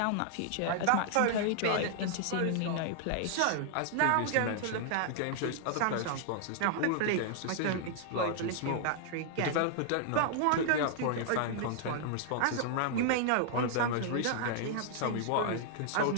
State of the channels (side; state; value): both; different; correlation -0.01